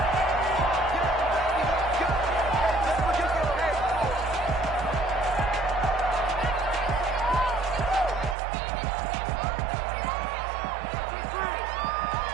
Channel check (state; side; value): drops out; left; at 8.3 s